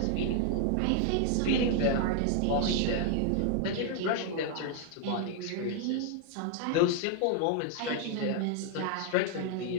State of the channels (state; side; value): different; both; correlation 0.00